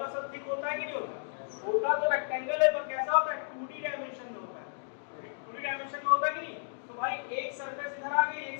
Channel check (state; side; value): silent; right; digital silence